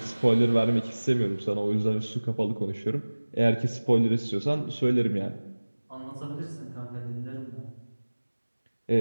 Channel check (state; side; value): inverted; both; correlation -1.00